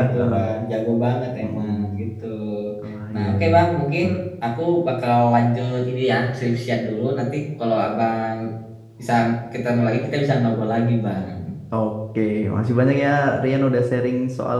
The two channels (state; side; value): identical; both; correlation 1.00